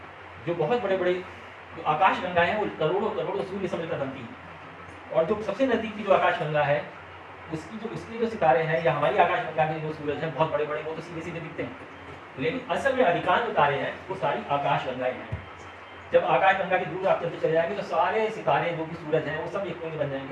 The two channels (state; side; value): identical; both; correlation 1.00